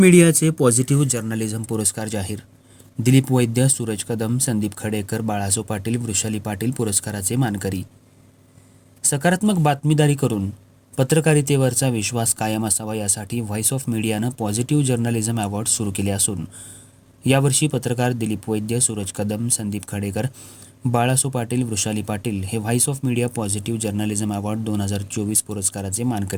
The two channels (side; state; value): both; identical; correlation 1.00